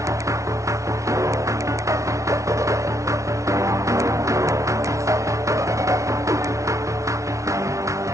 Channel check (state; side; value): late; left; 0.15 ms